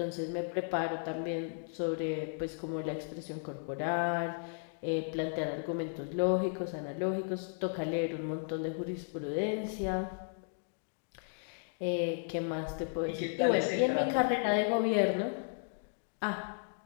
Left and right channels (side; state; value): right; silent; digital silence